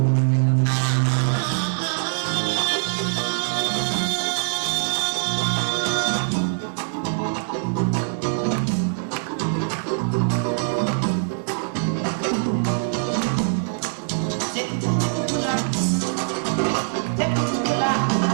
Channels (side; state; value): left; silent; digital silence